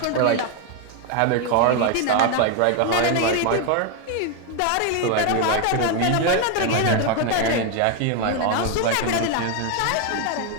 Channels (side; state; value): both; different; correlation 0.01